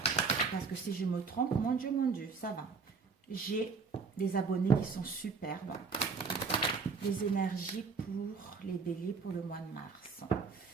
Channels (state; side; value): quieter; left; 4.9 dB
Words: Parce que si je me trompe, mon Dieu, ça va. J'ai des abonnés qui sont superbes. Les énergies pour les béliers pour le mois de mars.